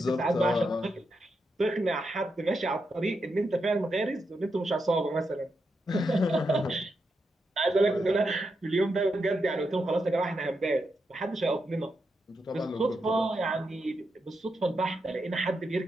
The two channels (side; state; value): both; normal; correlation 0.84